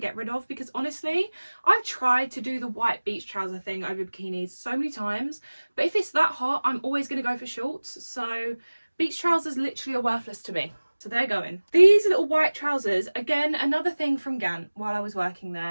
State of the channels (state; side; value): inverted; both; correlation -1.00